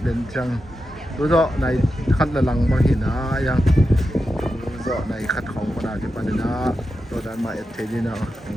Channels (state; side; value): normal; both; correlation 0.89